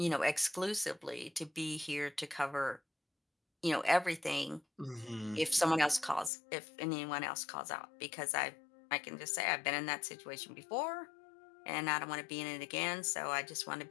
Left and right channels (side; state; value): right; drops out; at 6.3 s